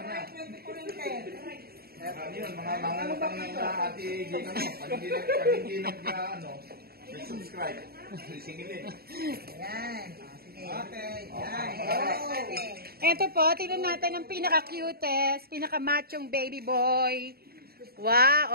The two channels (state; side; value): late; left; 0.45 ms